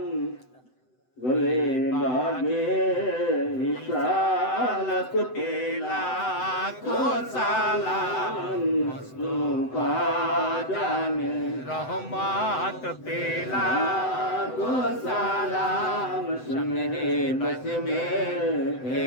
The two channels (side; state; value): right; late; 7.9 ms